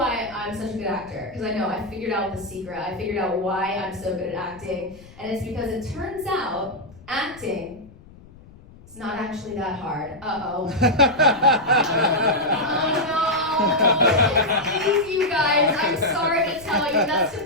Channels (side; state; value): left; noise; rumble, 22 dB below the sound